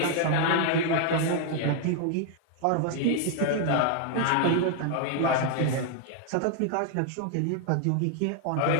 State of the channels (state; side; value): different; both; correlation 0.00